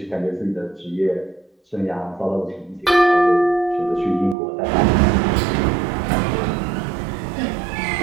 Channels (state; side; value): drops out; left; at 4.4 s